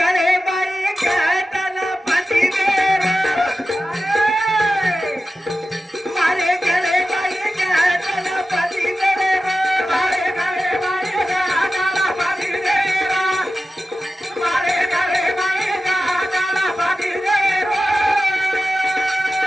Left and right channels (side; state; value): both; normal; correlation 0.94